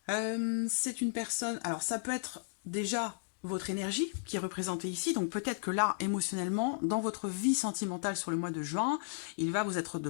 C'est une personne... Alors, ça peut être déjà votre énergie qui est représentée ici. Donc, peut-être que là, émotionnellement, dans votre vie sentimentale sur le mois de juin, il va vous être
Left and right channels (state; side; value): silent; right; digital silence